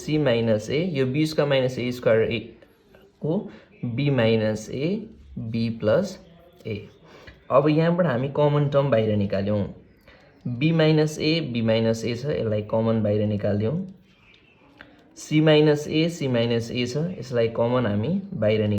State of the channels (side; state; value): both; identical; correlation 1.00